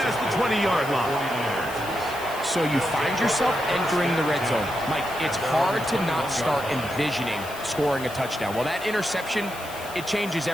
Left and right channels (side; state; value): left; noise; hiss, 15 dB below the sound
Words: the 20-yard line. So you find yourself entering the red zone. Mike, it's hard to not start envisioning scoring a touchdown. Well, that interception, it changes